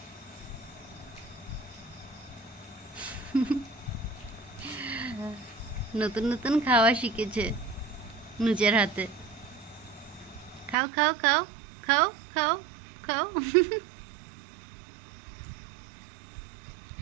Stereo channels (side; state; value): left; drops out; at 10.8 s